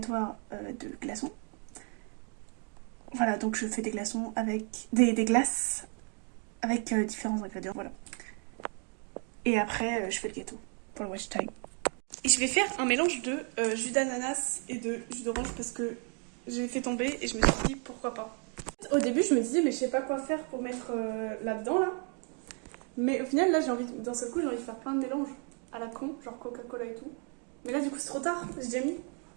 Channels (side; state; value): left; quieter; 38.9 dB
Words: de glaçons. Voilà, donc je fais des glaçons avec des glaces avec différents ingrédients. Voilà. Et après, je fais le gâteau pour le watch time. Et je vais faire un mélange de jus d'ananas et de jus d'orange parce que j'ai fait tomber et je me suis dit pourquoi pas. Au début, je me disais, mais je sais pas quoi faire pour mettre là-dedans là. Mais au final, là, d'un seul coup, j'ai envie de faire plein de mélanges à la con, genre Coca-Cola et tout. Mais là, du coup, c'est trop tard, j'ai déjà mis.